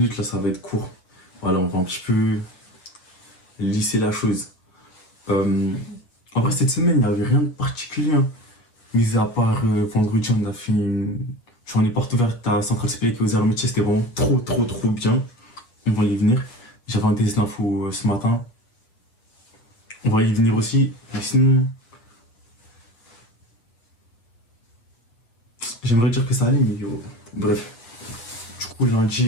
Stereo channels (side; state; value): right; late; 8.0 ms